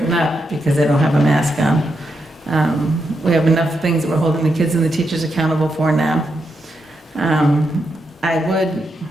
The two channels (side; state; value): both; normal; correlation 0.83